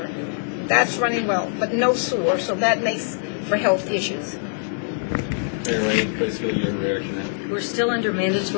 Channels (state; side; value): silent; right; digital silence